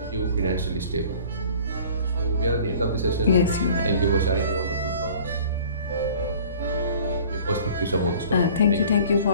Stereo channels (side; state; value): both; inverted; correlation -0.48